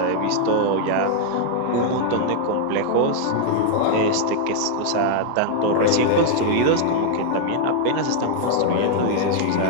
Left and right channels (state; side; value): different; both; correlation -0.01